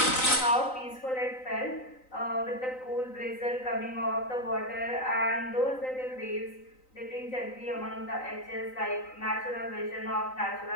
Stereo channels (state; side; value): late; right; 3.9 ms